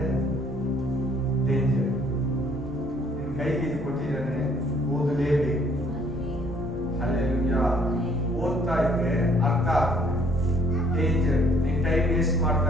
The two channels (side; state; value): both; normal; correlation 0.62